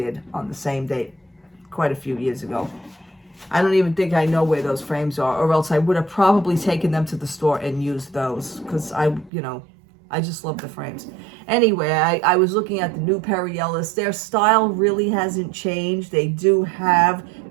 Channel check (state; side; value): drops out; left; at 9.3 s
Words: on the same date quite a few years ago. I don't even think I know where those frames are, or else I would have probably taken them to the store and used those, because I just love the frames. Anyway, I was looking at the new Perry Ellis. Their style really hasn't changed. They do have